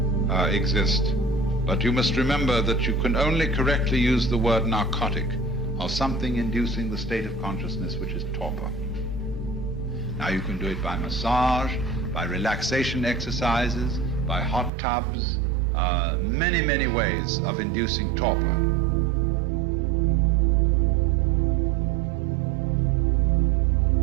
exist. But you must remember that you can only correctly use the word narcotic of something inducing the state of consciousness which is torpor. Now you can do it by massage, by relaxation exercises, by hot tubs, many, many ways of inducing torpor.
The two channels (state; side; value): drops out; left; at 14.7 s